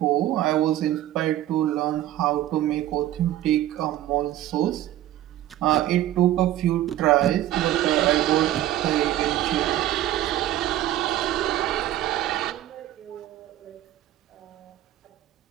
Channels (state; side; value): quieter; left; 13.4 dB